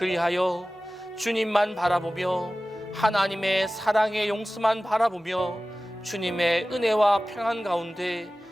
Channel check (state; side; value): normal; both; correlation 0.97